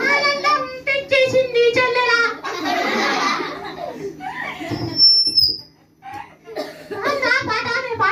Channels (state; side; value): identical; both; correlation 1.00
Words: ఆనందం తెచ్చేసింది చెల్లెలా.